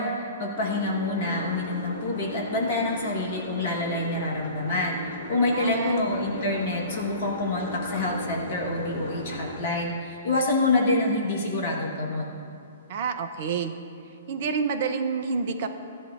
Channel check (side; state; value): both; inverted; correlation -0.42